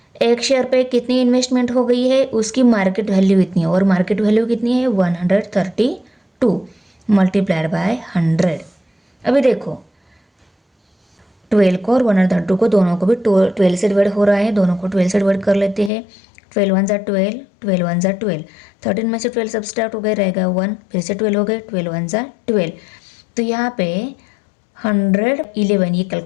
एक share पे कितनी investment हो गई है उसकी मार्केट वैल्यू इतनी है, और मार्केट वैल्यू कितनी है? 132 मल्टीप्लाइड बाय 100। अभी देखो, 12 को और 132 को दोनों को भी 12 से डिवाइड हो रहा है, दोनों को 12 से डिवाइड कर लेते हैं। 12 1 = 12, 12 1 = 12, 13 में से 12 सब्सट्रैक्ट हो गए, रहेगा 1, फिर से 12 हो गए, 12 1 = 12। तो यहाँ पे 111 ये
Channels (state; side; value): drops out; right; at 15.9 s